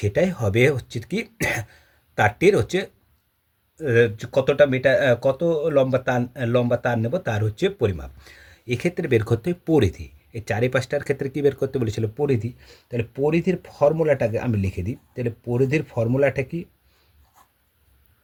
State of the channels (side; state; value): both; identical; correlation 1.00